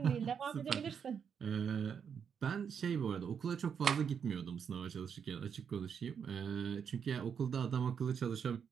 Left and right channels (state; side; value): quieter; left; 7.2 dB